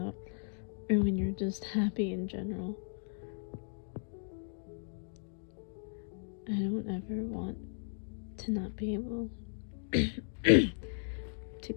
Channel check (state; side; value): silent; right; digital silence